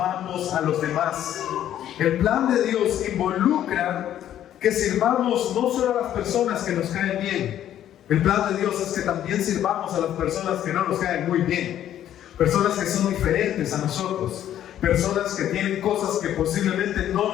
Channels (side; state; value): right; quieter; 11.3 dB